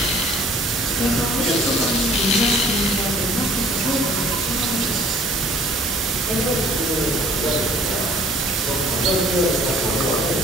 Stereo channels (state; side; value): normal; both; correlation 0.55